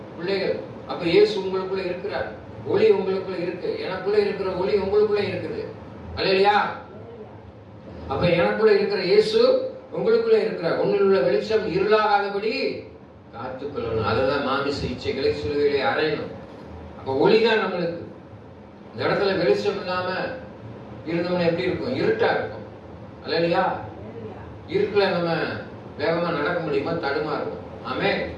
பிள்ளைகள். அப்ப இயேசு உங்களுக்குள்ள இருக்கிறார். ஒளி உங்களுக்குள்ள இருக்கு. எனக்குள்ள இருக்கிற ஒளி உங்களுக்குள்ள இருக்குது. அல்லையா? அப்ப எனக்குள்ள இருக்கிற இயேசு உங்களுக்குள்ள இருக்கிறார். உன்னில் உள்ள வெளிச்சம் இருளாகாதபடி காத்துக்கொள்ளணும். அதுதான் மாமிச இச்சைகளை சிலுவையிலே அறையணும். அப்ப ஒளிதான் நம்மளுக்கு. இந்த இடத்துல வெளிச்சம் இல்லாம இருந்தோம்னா எப்படி இருக்கும்? இருட்டா இருக்கும். அல்லையா? இருட்டுல நம்ம வேகமா நடக்க முடியுமா? தடுமாறும். ஆமே.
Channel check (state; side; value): identical; both; correlation 1.00